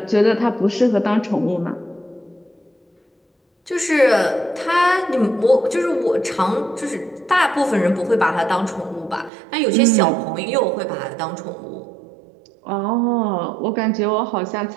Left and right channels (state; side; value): drops out; left; at 9.3 s